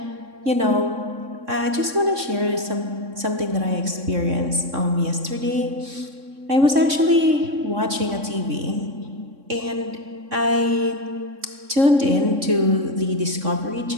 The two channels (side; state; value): left; late; 3.6 ms